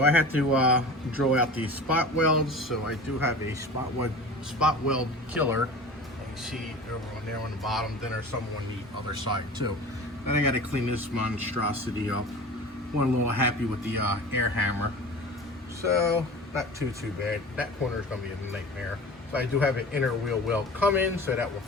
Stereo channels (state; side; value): normal; both; correlation 0.36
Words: I had to drill out these spot welds. So I do have a spot weld killer. You can see over on there on the bottom. Then there's some on the other side too. Then I got to clean this monstrosity up. One a little happy with the air hammer. So not too bad. That corner is going to be a nightmare. So I do have an inner wheel weld coming, so that will